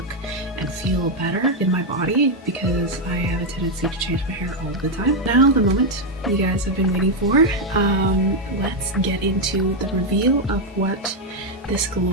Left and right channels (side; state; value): both; normal; correlation 0.02